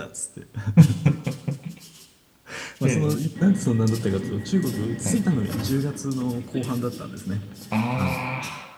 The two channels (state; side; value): identical; both; correlation 1.00